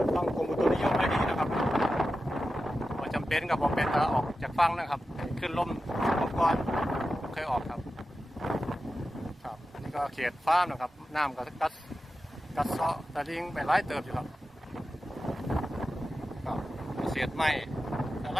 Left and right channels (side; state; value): both; normal; correlation 0.92